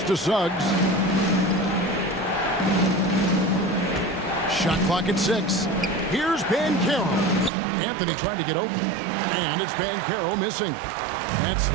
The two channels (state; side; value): drops out; left; at 7.5 s